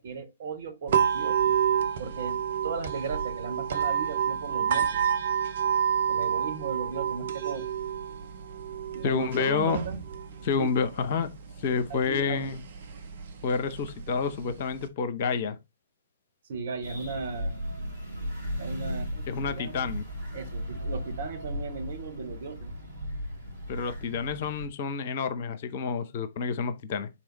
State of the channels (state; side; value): inverted; both; correlation -0.53